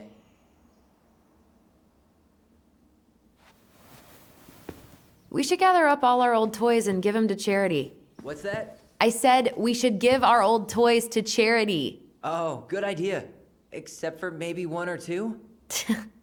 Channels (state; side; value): identical; both; correlation 1.00